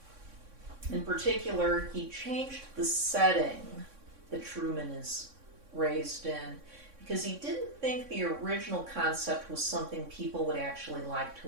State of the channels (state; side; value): late; left; 3.6 ms